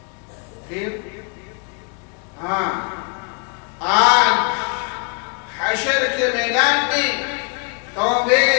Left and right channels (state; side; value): quieter; right; 36.3 dB